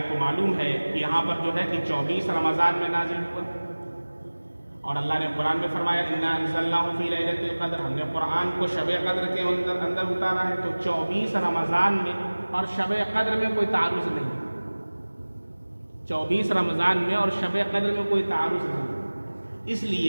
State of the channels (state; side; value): inverted; both; correlation -1.00